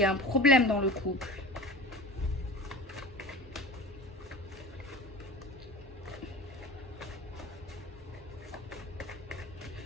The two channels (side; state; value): both; normal; correlation 0.35